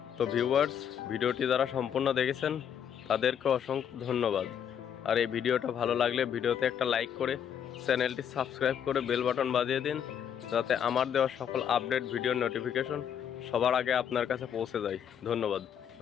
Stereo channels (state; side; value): quieter; right; 8.6 dB